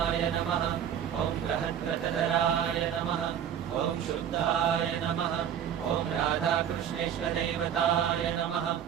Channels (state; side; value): quieter; left; 9.2 dB